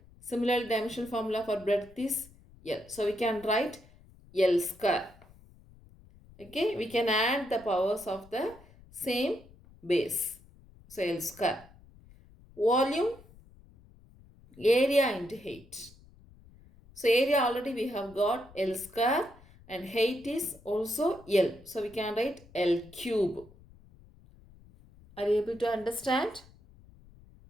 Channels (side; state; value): left; noise; rumble, 24 dB below the sound